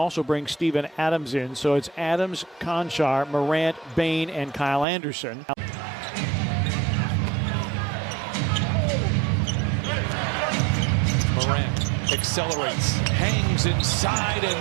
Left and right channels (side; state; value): left; drops out; at 4.9 s